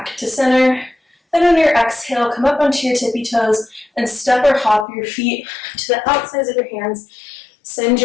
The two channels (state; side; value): drops out; right; at 4.9 s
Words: to center. Then on your exhale, come up onto your tippy toes and step or hop your feet to the outsides of your hands. Send